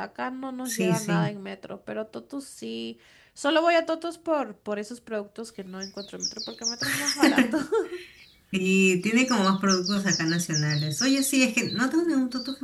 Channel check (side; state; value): both; identical; correlation 1.00